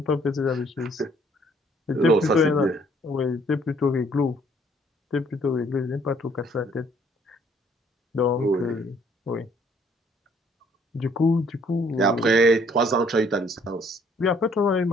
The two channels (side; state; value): both; normal; correlation 0.63